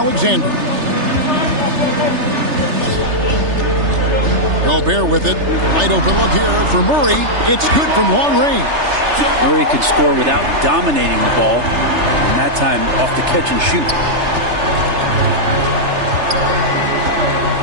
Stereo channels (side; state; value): left; late; 3.3 ms